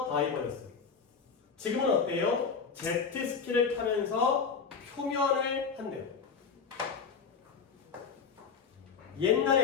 다이버였어요. 지금은 어때요? 제트스키를 타면서 표면을 한대요.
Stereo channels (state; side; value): quieter; right; 5.7 dB